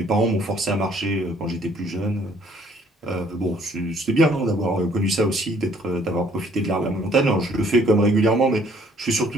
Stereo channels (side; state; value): both; normal; correlation 0.62